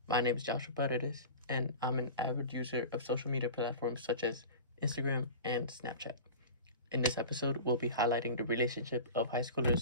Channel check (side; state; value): both; inverted; correlation -0.34